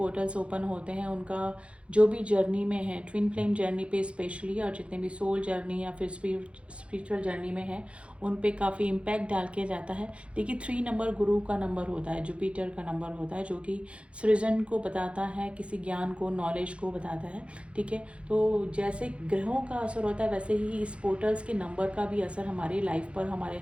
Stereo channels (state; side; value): late; left; 0.060 ms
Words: ओपन होते हैं, उनका जो भी जर्नी में है, ट्विन फ्लेम जर्नी पे स्पेशली, और जितने भी सोल जर्नी या फिर स्पिरिचुअल जर्नी में है, उन पे काफ़ी इम्पैक्ट डाल के जाता है। देखिए, 3 नंबर गुरु का नंबर होता है, जुपिटर का नंबर होता है, जो कि सृजन को बताता है, किसी ज्ञान को, नॉलेज को बताता है, ठीक है। तो जैसे ग्रहों का असर होता है, वैसे ही इस पोर्टल्स के नंबर का भी असर हमारी लाइफ पर, हमारे